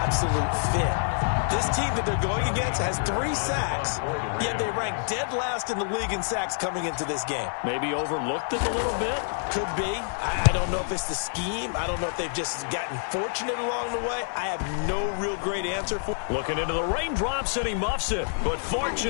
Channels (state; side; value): silent; right; digital silence